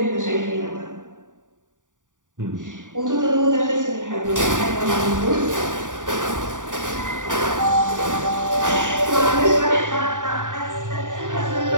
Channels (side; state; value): left; late; 0.87 ms